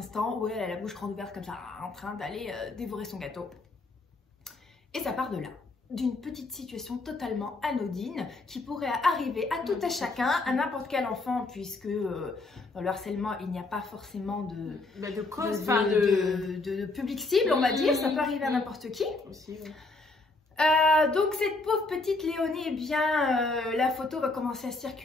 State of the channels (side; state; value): right; quieter; 3.3 dB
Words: où elle a la bouche grande ouverte comme ça en train d'aller dévorer son gâteau, et ça part de là, d'une petite situation totalement anodine qui pourrait arriver à tout à chacun, à n'importe quel enfant, puisque dans le harcèlement il n'y a pas forcément de cause, de public cible, on va dire, ça peut arriver à n'importe qui aussi, oui. Donc cette pauvre petite Léonie, eh bien la photo va commencer à